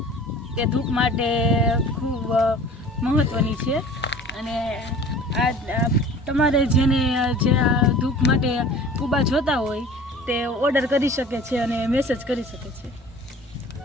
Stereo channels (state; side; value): normal; both; correlation 0.44